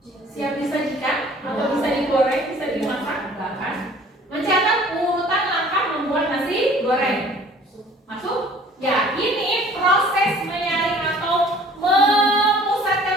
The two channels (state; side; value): normal; both; correlation 0.52